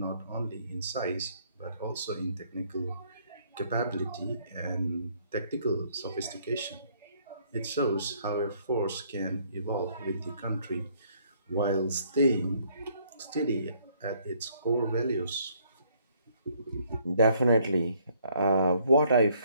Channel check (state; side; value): inverted; both; correlation -0.65